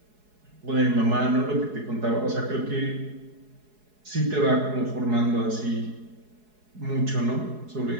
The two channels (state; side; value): late; left; 4.7 ms